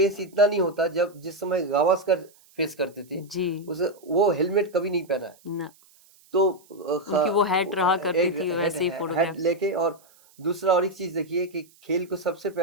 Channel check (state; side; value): noise; right; hiss, 29 dB below the sound